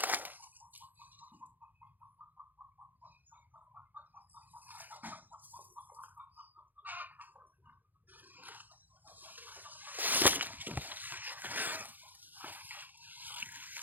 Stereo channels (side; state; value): left; late; 0.085 ms